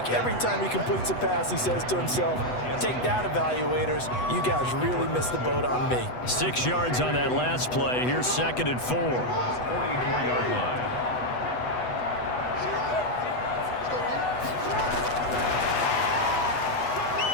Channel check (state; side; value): late; right; 8.1 ms